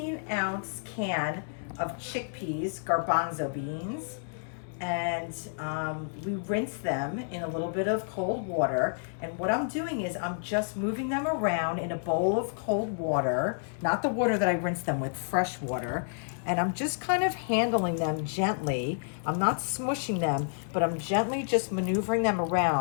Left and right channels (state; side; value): silent; right; 58 dB below the other